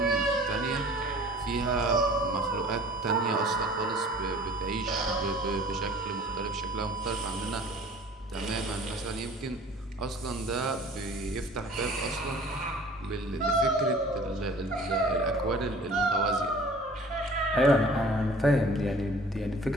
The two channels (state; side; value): normal; both; correlation 0.48